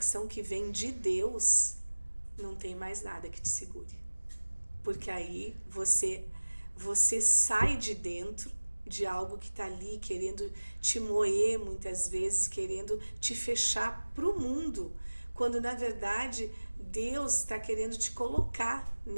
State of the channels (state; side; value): inverted; both; correlation -1.00